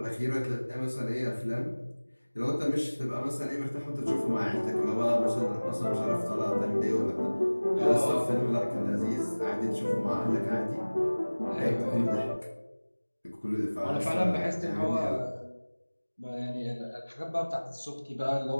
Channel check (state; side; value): inverted; both; correlation -1.00